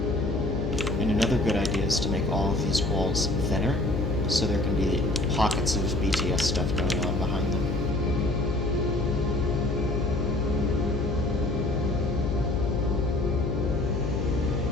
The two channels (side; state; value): left; noise; hum, 1 dB below the sound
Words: And another good idea is to make all of these walls thinner, so there can be pockets of BTS stuff going on behind them.